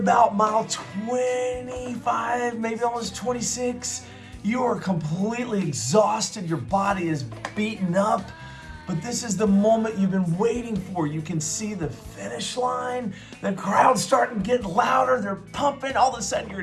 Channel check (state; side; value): identical; both; correlation 1.00